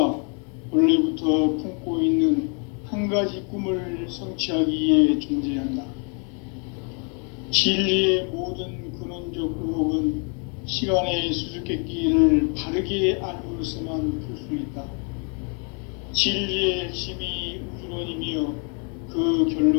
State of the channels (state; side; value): quieter; right; 38.6 dB